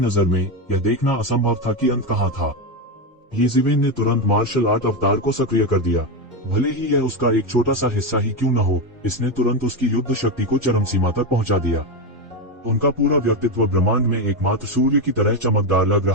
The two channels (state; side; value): normal; both; correlation 0.11